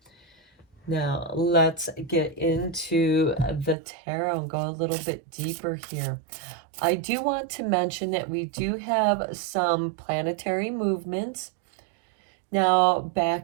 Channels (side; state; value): left; drops out; at 3.8 s